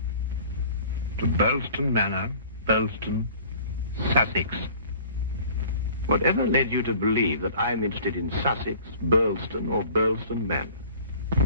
To Burleston Manor, Burleston, Sussex. Whatever led you to believe that I'm interested in Sussex, Burleston, or Burleston Manor?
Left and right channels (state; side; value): inverted; both; correlation -0.48